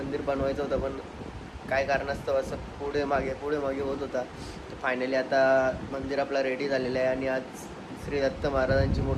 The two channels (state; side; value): identical; both; correlation 1.00